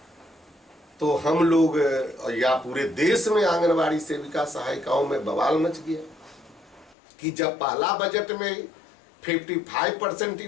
तो हम लोग, या पूरे देश में आंगनबाड़ी सेविका सहायिकाओं में बवाल मच गया कि जब पहला बजट में 55%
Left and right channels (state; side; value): drops out; right; at 7.0 s